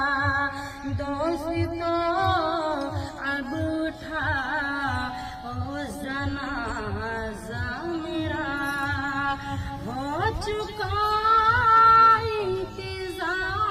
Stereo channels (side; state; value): both; identical; correlation 1.00